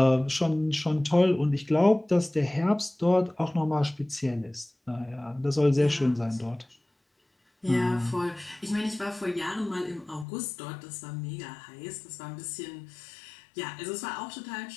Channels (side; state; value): right; drops out; at 10.2 s